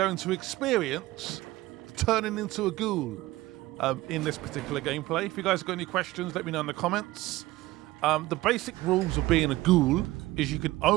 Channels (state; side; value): quieter; left; 18.2 dB